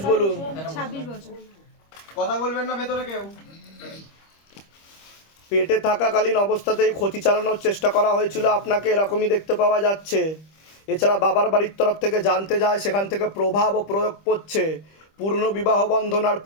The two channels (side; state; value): right; late; 25 ms